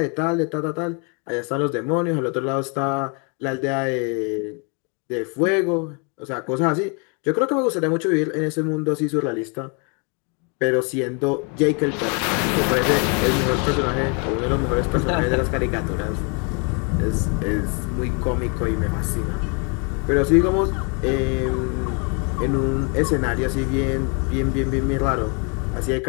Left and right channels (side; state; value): right; quieter; 35.6 dB